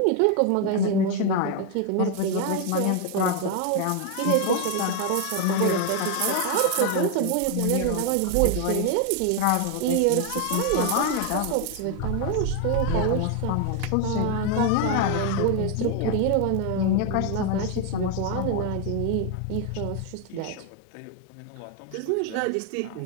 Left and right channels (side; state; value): both; different; correlation 0.01